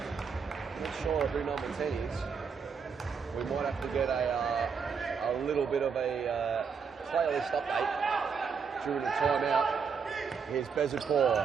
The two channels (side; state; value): left; quieter; 6.0 dB